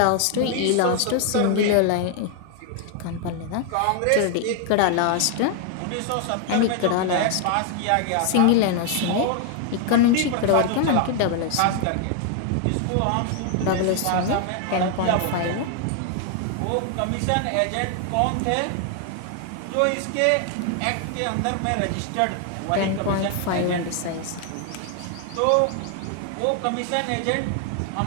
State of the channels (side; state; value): both; different; correlation 0.00